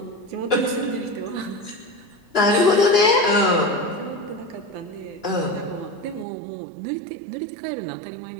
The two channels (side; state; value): left; drops out; at 6.2 s